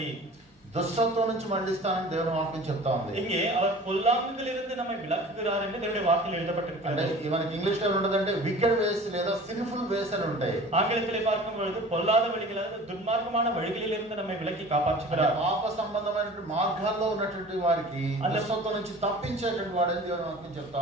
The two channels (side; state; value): both; normal; correlation 0.43